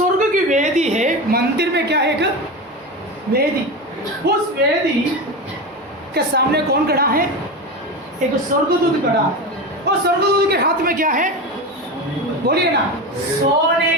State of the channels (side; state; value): both; normal; correlation 0.22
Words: की वेदी है, मंदिर में क्या है? एक वेदी। उस वेदी के सामने कौन खड़ा है? एक स्वर्गदूत खड़ा है। और स्वर्गदूत के हाथ में क्या है? बोलिए ना, सोने